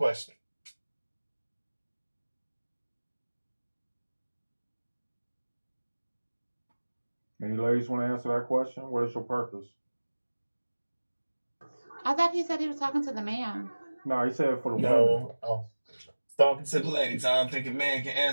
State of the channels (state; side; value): inverted; both; correlation -1.00